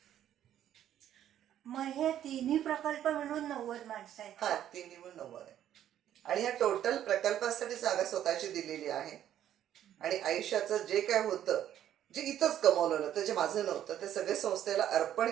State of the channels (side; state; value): left; quieter; 11.1 dB